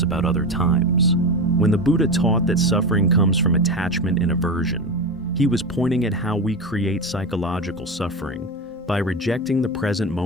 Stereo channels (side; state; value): both; normal; correlation 0.21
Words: about other times. When the Buddha taught that suffering comes from attachment and aversion, he was pointing at how we create psychological suffering by rejecting the present